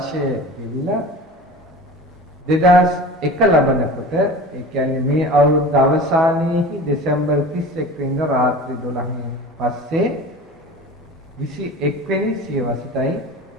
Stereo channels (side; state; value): both; normal; correlation 0.36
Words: ගෙවිලා 2001 ලබනකොට ඒ කියන්නේ මේ අවුරුද්ද අවසානයේහි දෙසැම්බර් 31 වෙනිදා රාත්‍රී 12න් පස්සේ 21 වෙනි සියවසටයි